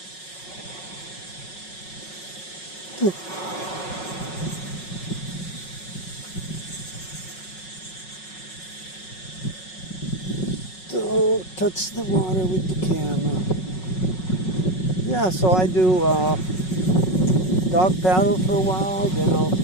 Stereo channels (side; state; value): right; late; 5.4 ms